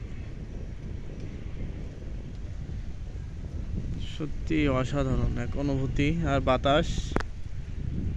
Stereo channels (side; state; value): both; identical; correlation 1.00